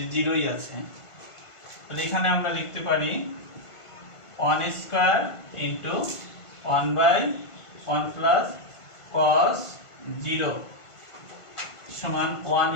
0ই আছে, তাহলে এখানে আমরা লিখতে পারি 1 square into 1 by 1 plus cos 0 সমান 1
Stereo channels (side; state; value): right; late; 1.5 ms